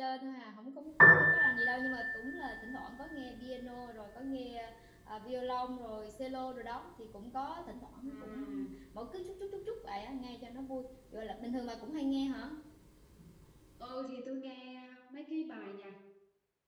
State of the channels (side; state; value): both; identical; correlation 1.00